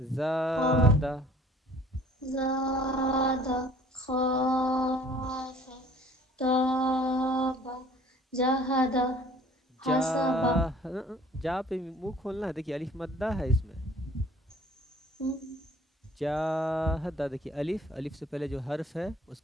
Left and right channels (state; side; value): normal; both; correlation 0.53